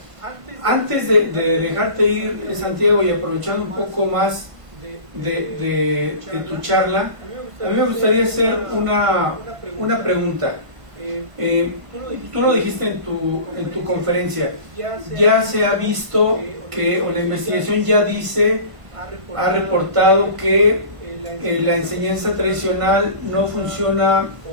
Antes de dejarte ir, Santiago, y aprovechando un poco más de tu charla, a mí me gustaría hacer una pregunta. Tú lo dijiste en tu conferencia, ya se ha visto que, o la investigación ya ha reportado que la enseñanza tradicional no funciona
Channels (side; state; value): left; late; 1.5 ms